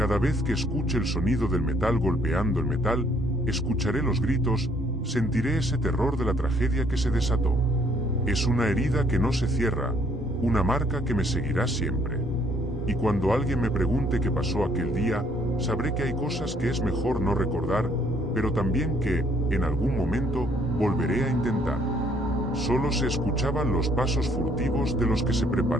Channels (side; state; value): both; normal; correlation 0.65